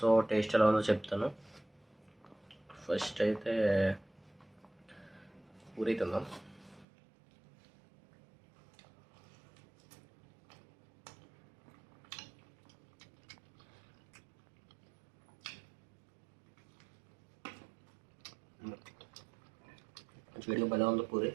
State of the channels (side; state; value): left; drops out; at 6.9 s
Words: టేస్ట్ ఎలా ఉందో చెప్తాను. ఫస్ట్ అయితే పూరి తిందాం. వేడిగా భలే ఉంది పూరి.